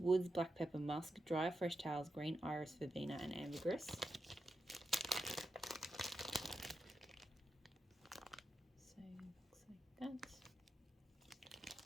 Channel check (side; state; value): both; normal; correlation 0.87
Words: Black Pepper, Musk, Dry Fresh Towels, Green Iris, Verbena, and Ambergris. So looks like that.